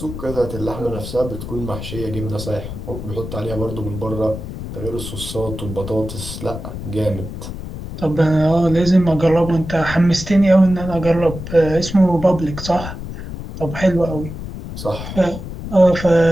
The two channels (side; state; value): left; noise; rumble, 9 dB below the sound